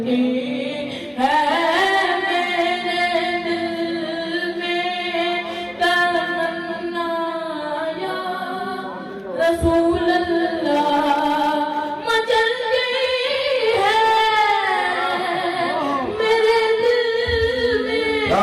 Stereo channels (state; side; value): identical; both; correlation 1.00